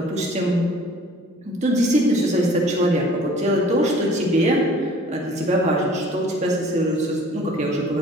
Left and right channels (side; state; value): both; normal; correlation 0.51